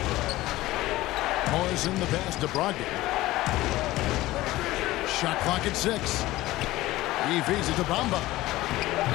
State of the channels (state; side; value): quieter; right; 17.5 dB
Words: Morrison the pass to Brogdon. Shot clock at 6. He feeds it to Bamba.